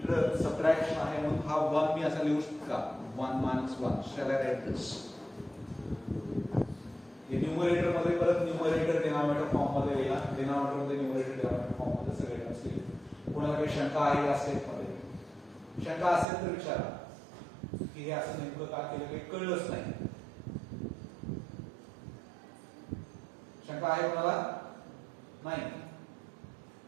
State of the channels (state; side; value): drops out; left; at 16.2 s